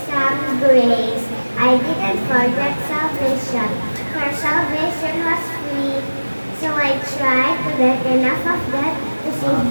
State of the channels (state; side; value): inverted; both; correlation -1.00